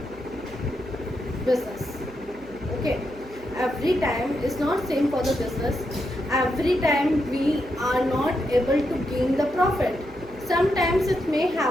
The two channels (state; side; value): noise; right; hum, 21 dB below the sound